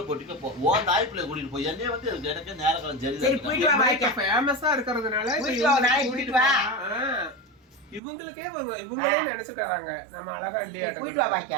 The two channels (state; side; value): drops out; left; at 8.0 s